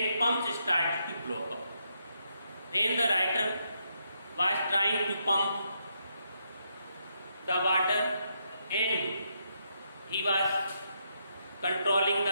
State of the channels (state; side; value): inverted; both; correlation -0.79